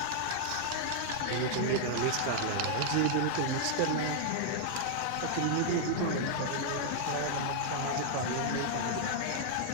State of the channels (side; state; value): both; different; correlation -0.01